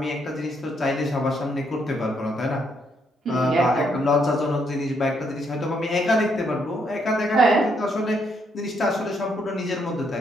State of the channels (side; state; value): both; normal; correlation 0.74